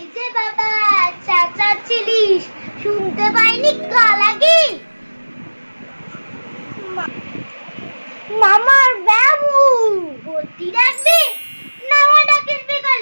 যে বাবা চেঁচাচ্ছিলিস, শুনতে পাইনি কালাগি? মামার বাবু ভর্তি রাখবি, না হয় ডাকিস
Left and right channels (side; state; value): both; inverted; correlation -1.00